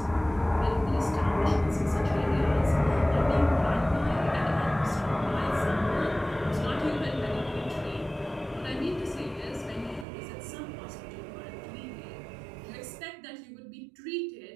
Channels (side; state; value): left; drops out; at 10.1 s